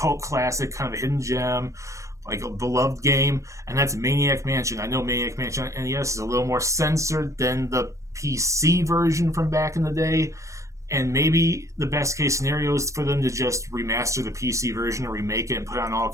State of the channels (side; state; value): left; late; 0.15 ms